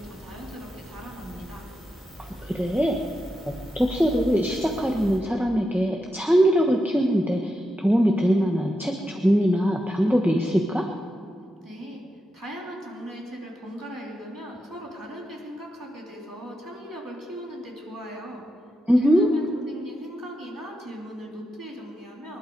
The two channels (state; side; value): normal; both; correlation 0.87